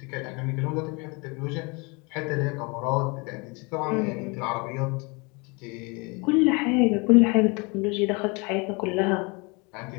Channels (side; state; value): right; quieter; 29.2 dB